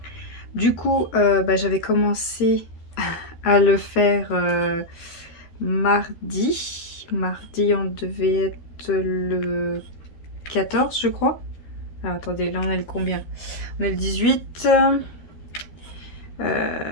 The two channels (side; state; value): right; late; 13 ms